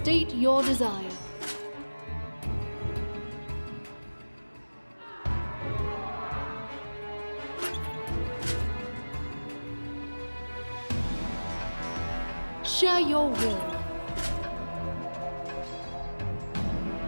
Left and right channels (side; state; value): both; inverted; correlation -1.00